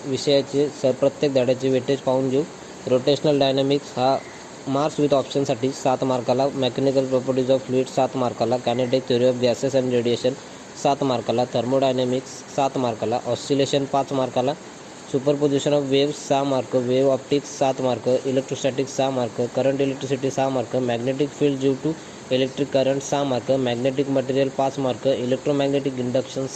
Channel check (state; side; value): identical; both; correlation 1.00